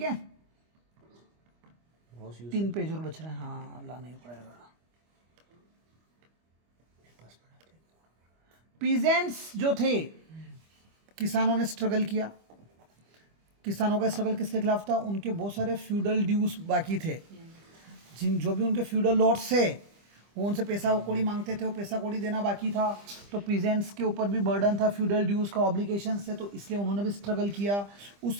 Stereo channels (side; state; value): left; late; 25 ms